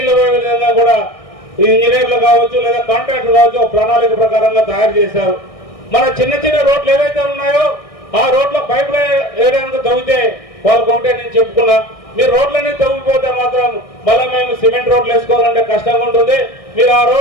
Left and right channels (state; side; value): late; right; 1.6 ms